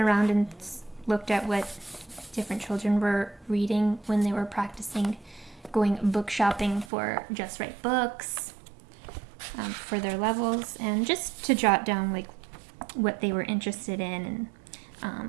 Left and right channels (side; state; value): left; drops out; at 6.9 s